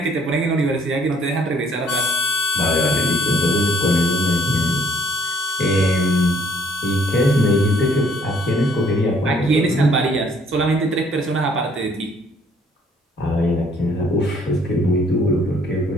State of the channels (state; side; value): normal; both; correlation 0.62